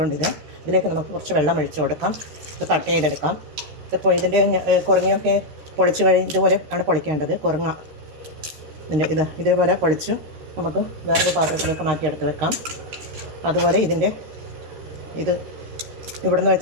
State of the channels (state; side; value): late; left; 13 ms